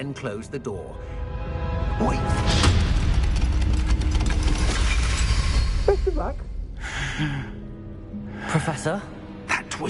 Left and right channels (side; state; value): both; identical; correlation 1.00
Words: close the door. Wait! Best of luck. Professor? That